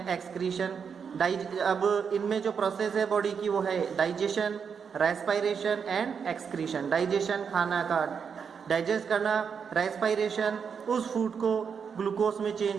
excretion. अब इनमें जो प्रोसेस है बॉडी की वो है digestion, respiration and excretion. Digestion खाना का डाइजेस्ट करना, रेस्पिरेशन उस फूड को ग्लूकोज में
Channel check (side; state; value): left; quieter; 6.5 dB